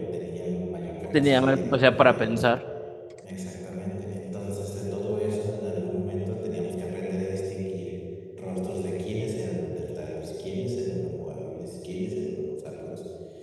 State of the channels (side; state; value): both; identical; correlation 1.00